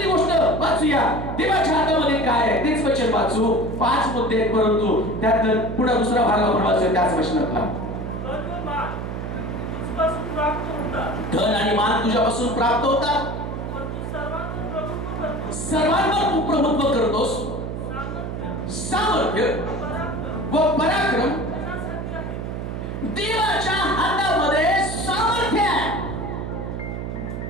गोष्ट वाचूया, देवाच्या हातामध्ये काय आहे तेच वचन वाचू. 5 मुद्दे आहेत, परंतु त्यात पुढे दुसरा भाग आपण वाचूया त्याच वचनातला. धन आणि मान तुझ्यापासून प्राप्त होतात, सर्वांवर तू प्रभुत्व करतोस, सामर्थ्य व पराक्रम देवाच्या हातामध्ये सामर्थ्य आहे.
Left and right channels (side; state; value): right; noise; hum, 5 dB below the sound